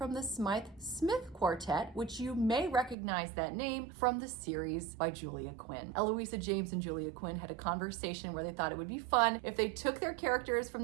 the Smythe Smith Quartet, which you may recognize that name from the series by Julia Quinn. Eloisa James and Julia Quinn had a conversation where they thought it would be fun if they took their characters from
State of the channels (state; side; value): drops out; left; at 3.0 s